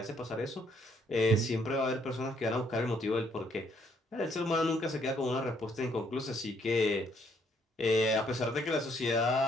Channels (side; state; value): both; normal; correlation 0.69